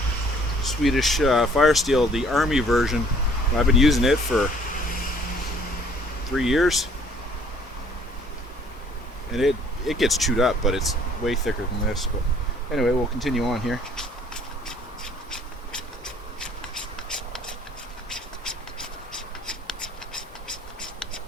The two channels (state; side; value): normal; both; correlation 0.57